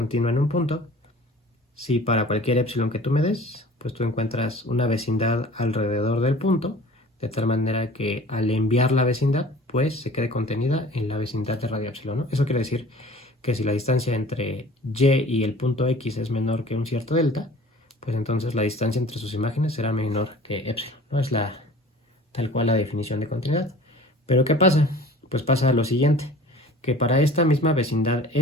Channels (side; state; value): both; normal; correlation 0.45